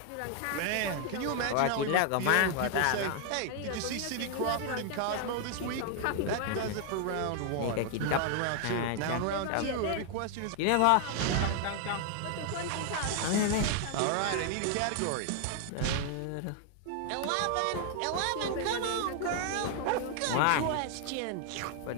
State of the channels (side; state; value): both; different; correlation 0.00